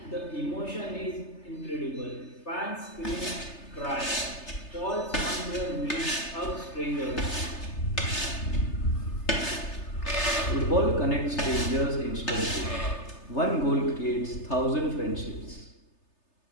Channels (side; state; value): right; late; 3.3 ms